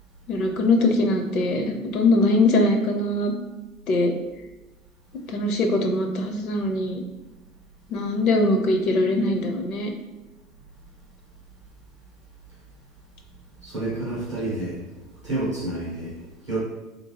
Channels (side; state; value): both; normal; correlation 0.47